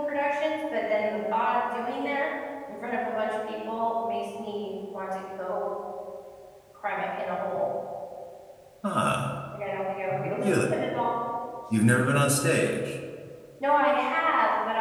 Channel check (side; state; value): both; identical; correlation 1.00